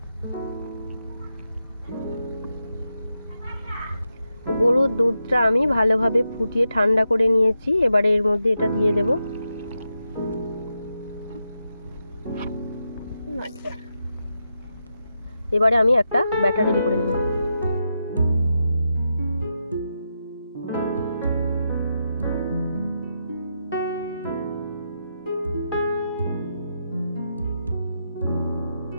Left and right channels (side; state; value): both; inverted; correlation -0.86